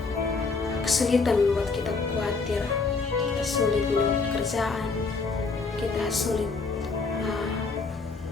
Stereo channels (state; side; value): quieter; right; 4.3 dB